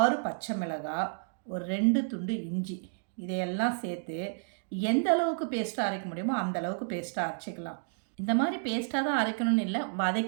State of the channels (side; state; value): left; silent; digital silence